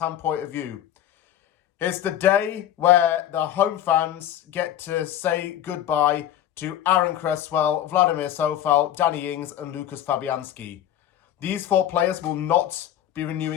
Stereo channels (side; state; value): right; quieter; 11.5 dB